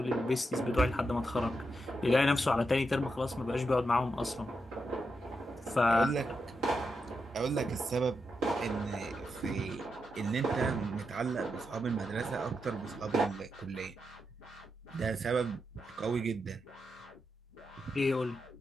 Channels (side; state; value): both; normal; correlation 0.85